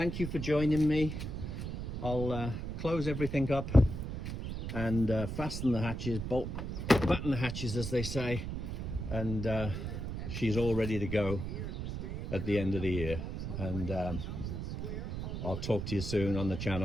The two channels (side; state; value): right; noise; rumble, 5 dB below the sound